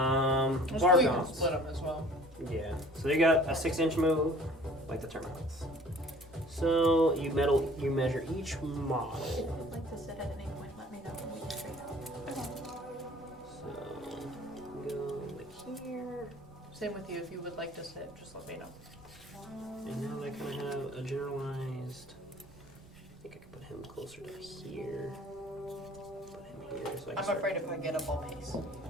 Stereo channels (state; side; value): noise; right; rumble, 23 dB below the sound